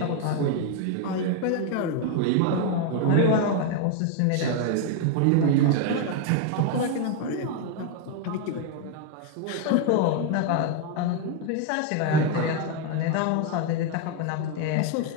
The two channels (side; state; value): both; different; correlation 0.01